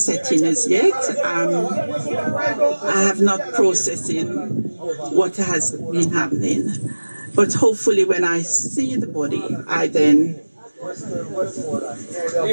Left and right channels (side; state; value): both; inverted; correlation -1.00